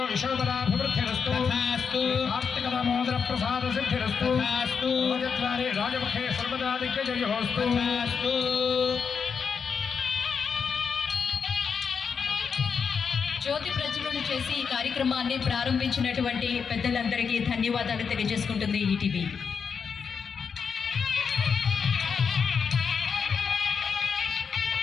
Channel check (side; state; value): right; quieter; 6.2 dB